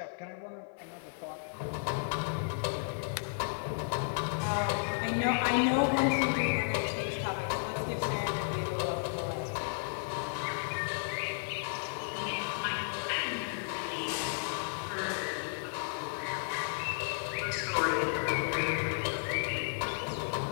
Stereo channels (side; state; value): right; silent; digital silence